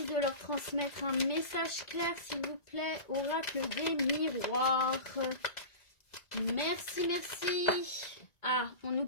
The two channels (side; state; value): right; late; 1.8 ms